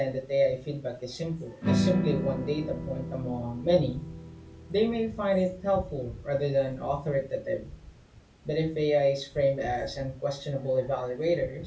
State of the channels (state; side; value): identical; both; correlation 1.00